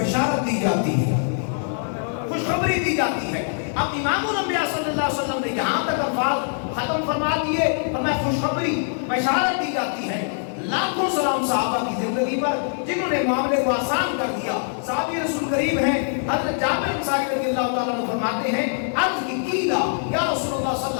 دی جاتی ہے، خوشخبری دی جاتی ہے. اب امام الانبیاء صلی اللہ علیہ وسلم نے یہاں تک الفاظ ختم فرما دیے، فرمایا خوشخبری بشارت دی جاتی ہے. لاکھوں سلام صحابہ کی زندگی پر جنہوں نے معاملے کو آسان کر دیا. صحابی رسول کریم ہیں حضرت جابر انصاری رضی اللہ تعالیٰ عنہ فرماتے ہیں عرض کی قیلا یا رسول اللہ صلی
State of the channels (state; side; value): silent; right; 56 dB below the other